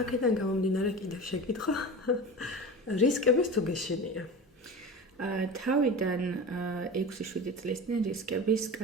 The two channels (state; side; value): normal; both; correlation 0.31